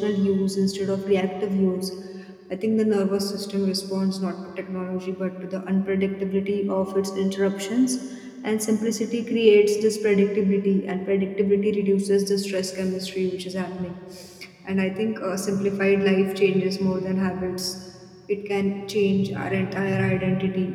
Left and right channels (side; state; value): both; identical; correlation 1.00